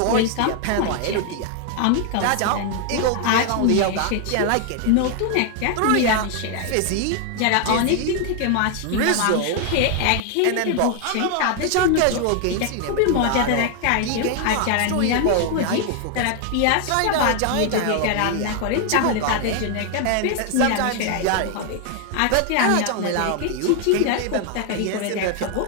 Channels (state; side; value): different; both; correlation 0.00